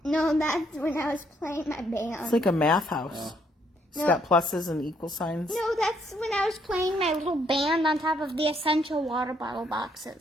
No, that's when I was playing my band. It's like a math house. It's No. got pluses and equal signs. No, that's when I was playing my little band on top of the essential water bottle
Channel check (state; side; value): normal; both; correlation 0.70